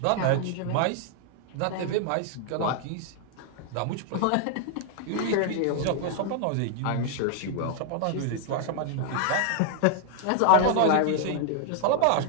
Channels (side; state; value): both; different; correlation 0.00